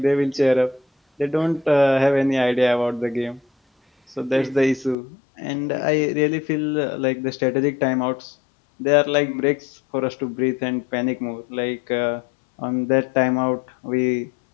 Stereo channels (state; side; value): drops out; right; at 5.0 s